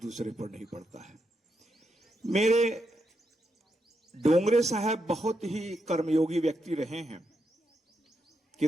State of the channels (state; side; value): normal; both; correlation 0.82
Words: पर नहीं पड़ता है। मेरे डोंगरे साहब बहुत ही कर्मयोगी व्यक्ति रहे हैं,